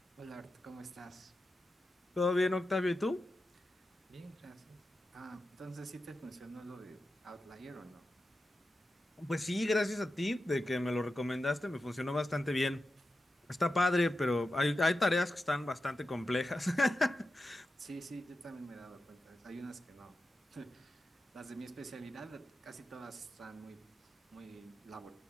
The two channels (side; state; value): both; normal; correlation 0.91